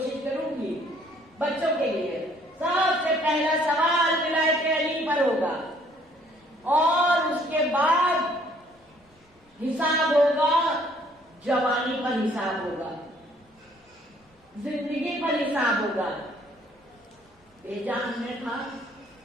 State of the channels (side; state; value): both; normal; correlation 0.61